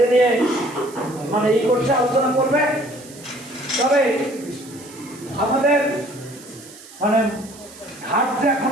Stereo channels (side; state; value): right; noise; hiss, 19 dB below the sound